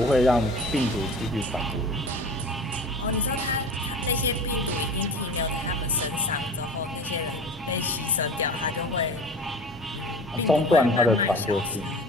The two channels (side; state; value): both; normal; correlation 0.37